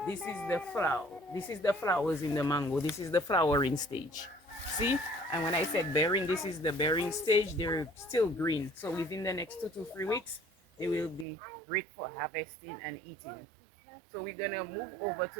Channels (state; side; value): drops out; left; at 11.2 s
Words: This is the flower. This is the flowers in the mango. This is the flowering stage. See? And when I said bearing, this is the bearing stage. They're still green. So within the next 2 to 3 weeks, they will be great for harvesting and eating. So we're going to move over